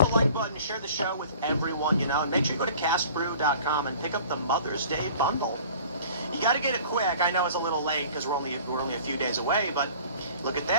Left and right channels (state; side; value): inverted; both; correlation -0.48